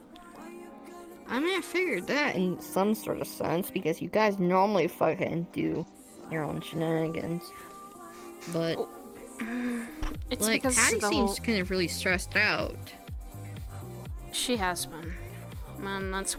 I mean, I figured that in some sort of sense because you guys normally fucking do your own shenanigans, but It's like because Patty the seems whole... kind of really stressed out. She has been, and that's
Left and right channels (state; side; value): identical; both; correlation 1.00